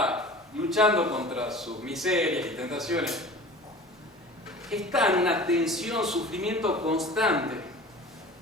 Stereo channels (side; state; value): both; normal; correlation 0.40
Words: luchando contra sus miserias y tentaciones, está en una tensión, sufrimiento constante,